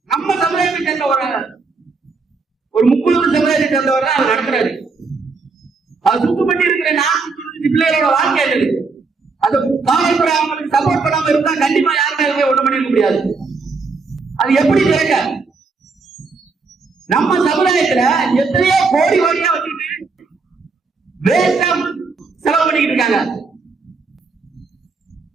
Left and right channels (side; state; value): left; quieter; 4.4 dB